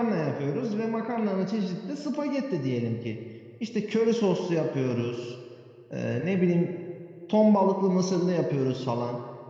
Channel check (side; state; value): both; identical; correlation 1.00